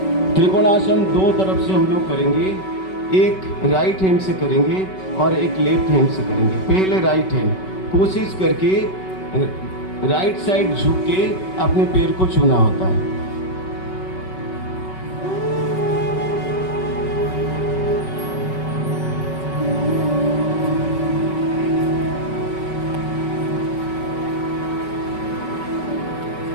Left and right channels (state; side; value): late; right; 5.3 ms